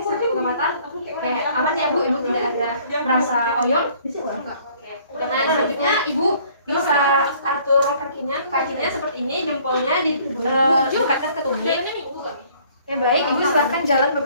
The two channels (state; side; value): inverted; both; correlation -0.57